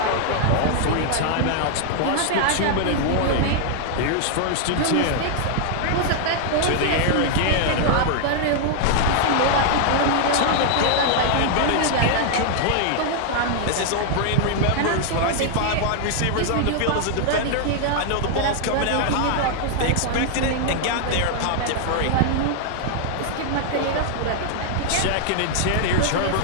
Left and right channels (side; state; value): both; different; correlation 0.00